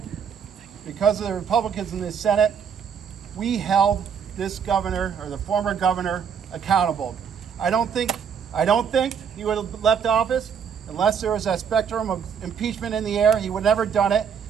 because of the Republicans in the Senate, we held this governor, or the former governor, accountable. I don't think he would have left office unless there was that spectrum of impeachment in the air. He would have never done it,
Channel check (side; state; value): left; quieter; 7.2 dB